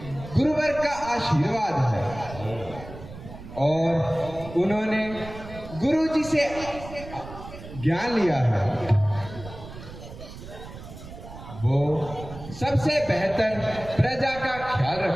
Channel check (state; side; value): noise; right; rumble, 14 dB below the sound